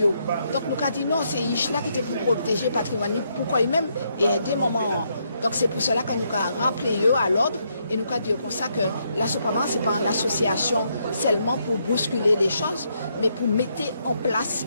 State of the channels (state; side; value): inverted; both; correlation -0.76